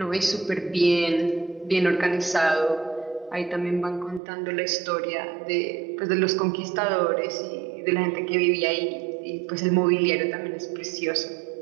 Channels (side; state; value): left; drops out; at 4.2 s